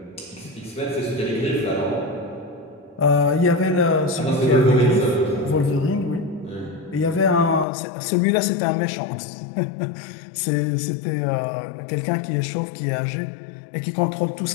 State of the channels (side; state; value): right; drops out; at 7.7 s